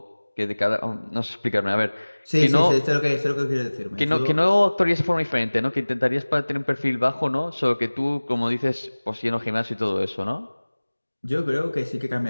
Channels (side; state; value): both; inverted; correlation -1.00